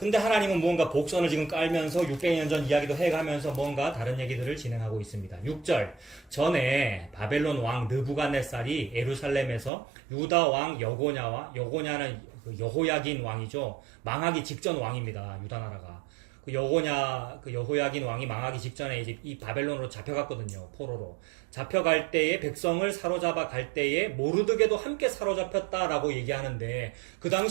하나님은 무언가 복선을 지금 깔면서 600년 전 이야기도 해가면서 뭔가 다른 얘기들을 진행하고 있습니다. 6절 전에 바벨론 왕 느부갓네살이 예루살렘에서 유다 왕 여고냐는 여호야긴 왕이죠. 망하기 직전 왕입니다. 유다 나라가. 그 여호야긴 왕이 망하기 직전에 이제 이 바벨론으로 잡혀갔거든요. 포로로. 잡혀갈 때에 백성을 사로잡아 갈 때에 모르드게도 함께 사로잡혔다라고 얘기하는데 그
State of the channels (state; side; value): drops out; left; at 9.7 s